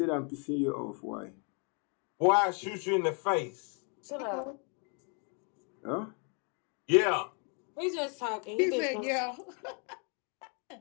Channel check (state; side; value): quieter; right; 37.7 dB